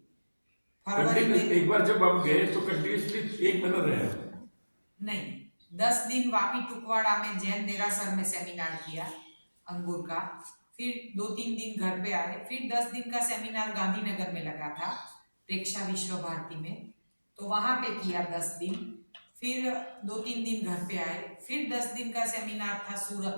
फरवरी में एक बार जब हम गए तो कंटिन्यूसली 1 महीना रहे? नहीं 10 दिन वापी टुकवाड़ा में जैन देरासर में सेमिनार किया अंगूर का, फिर 2-3 दिन घर पे आए, फिर 10 दिन का सेमिनार गांधीनगर में लगा था प्रेक्षा विश्व भारती में, तो वहां पे किया 10 दिन, फिर 2-3 दिन घर पे आए, फिर 10 दिन का सेमिनार था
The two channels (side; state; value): both; inverted; correlation -1.00